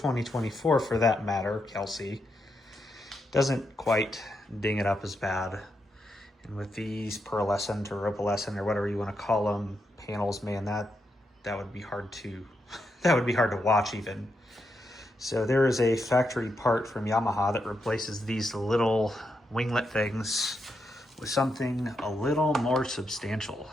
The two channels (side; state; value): both; normal; correlation 0.83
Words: for that matter, Kelsey, doesn't quite ding it up as bad. And with these pearlescent or opalescent or whatever you want to call them panels, man, that would be hard to that would be hard to watch even. So there is a factory part from Yamaha that replaces these little winglet things with something a little more substantial.